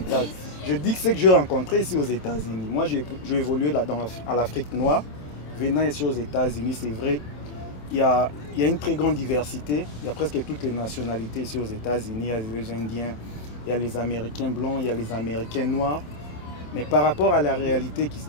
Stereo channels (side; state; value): right; late; 27 ms